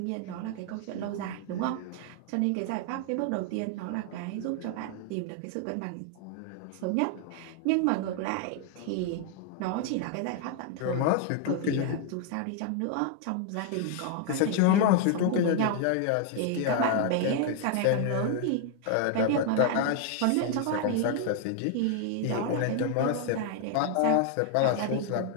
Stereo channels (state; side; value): different; both; correlation 0.00